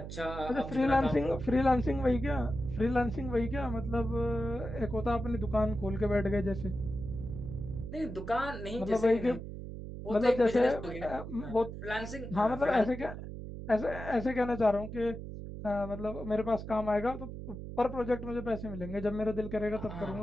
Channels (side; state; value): right; noise; hum, 9 dB below the sound